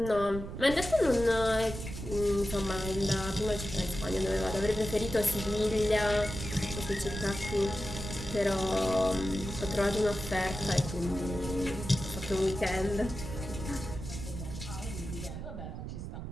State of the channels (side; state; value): right; noise; rumble, 8 dB below the sound